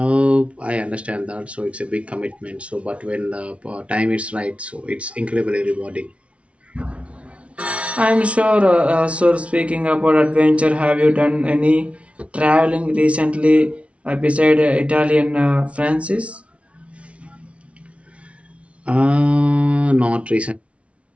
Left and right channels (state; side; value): late; left; 0.062 ms